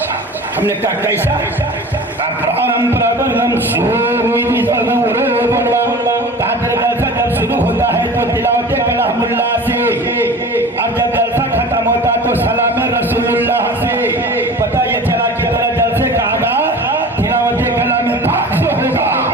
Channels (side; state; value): both; normal; correlation 0.38